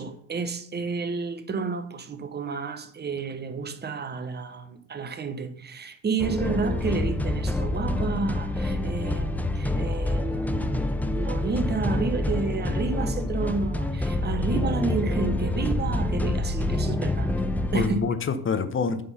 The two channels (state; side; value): normal; both; correlation 0.64